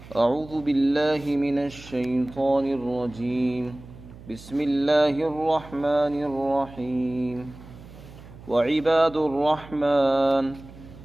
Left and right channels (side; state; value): right; noise; hum, 18 dB below the sound